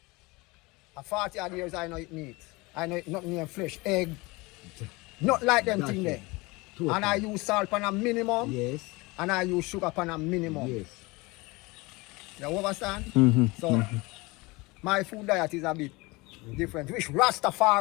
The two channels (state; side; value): quieter; right; 24.0 dB